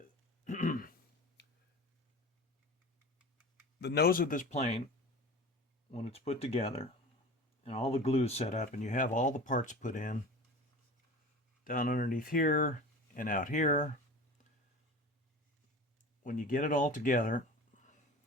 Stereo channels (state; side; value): normal; both; correlation 0.36